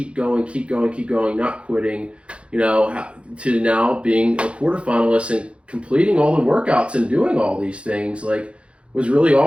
going, not quitting, to now being a quarterfinalist and completing all the workouts and doing all these things, like, was really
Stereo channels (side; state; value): left; late; 0.059 ms